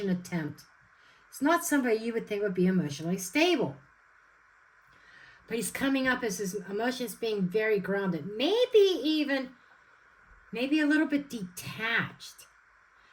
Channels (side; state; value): both; identical; correlation 1.00